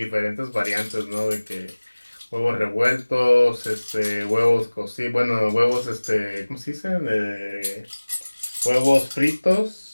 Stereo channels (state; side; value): inverted; both; correlation -1.00